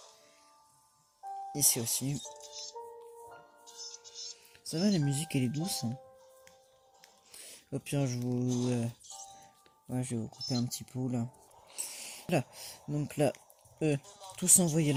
ici aussi. Ça va, la musique, elle est douce. Hein. Au pire, je vais vous couper un petit peu, là. Voilà, donc là, tous envoyés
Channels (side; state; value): both; identical; correlation 1.00